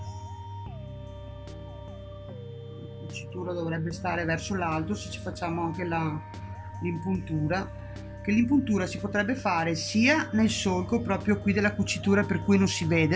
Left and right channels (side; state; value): both; identical; correlation 1.00